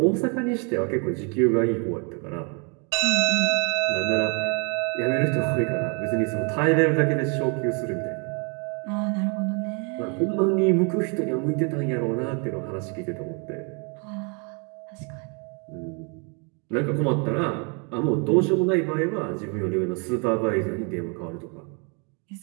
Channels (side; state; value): left; quieter; 35.1 dB